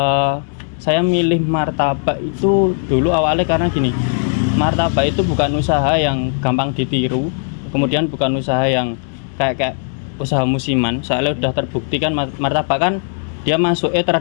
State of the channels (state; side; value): silent; right; digital silence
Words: Saya milih martabak itu dulu awalnya karena gini, martabak itu bukan usaha yang gampang ditiru, kemudian bukan usaha yang kayak usaha musiman. Soalnya udah terbukti kan martabak kan dia masuknya